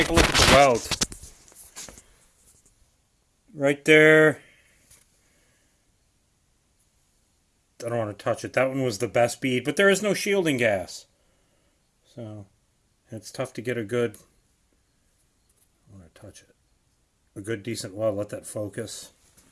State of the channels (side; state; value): both; identical; correlation 1.00